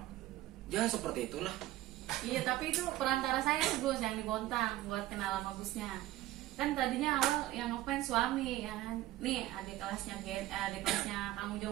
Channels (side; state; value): left; quieter; 15.7 dB